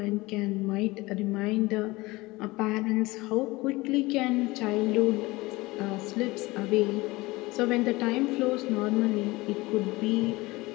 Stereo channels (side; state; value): right; quieter; 21.4 dB